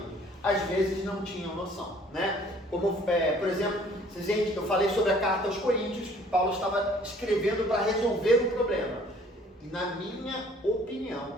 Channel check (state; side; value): normal; both; correlation 0.56